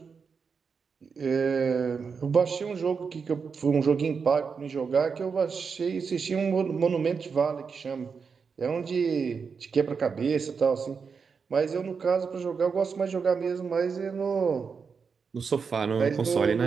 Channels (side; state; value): left; quieter; 5.6 dB